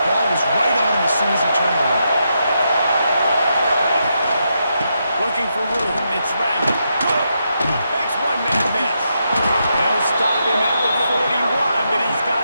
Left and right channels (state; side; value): inverted; both; correlation -0.82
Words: ball was right on him as soon as he turned around. Looking for room. It's random. Makes one man miss. They'll stop him at the 41, but he's